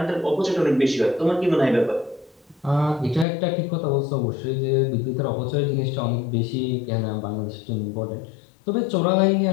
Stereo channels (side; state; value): right; drops out; at 3.2 s